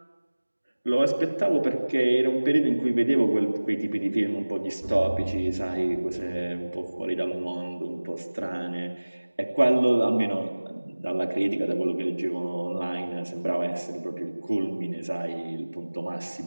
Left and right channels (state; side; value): inverted; both; correlation -1.00